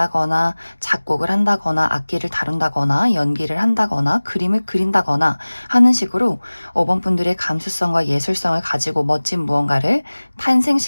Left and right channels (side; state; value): both; inverted; correlation -1.00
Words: 작곡을 한다거나 악기를 다룬다거나 연기를 한다거나 그림을 그린다거나 하는 식으로 5번 분들의 감수성과 예술성을 가지고 멋진 무언가를